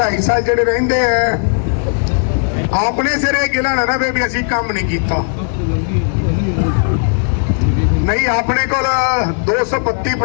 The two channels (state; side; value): silent; right; digital silence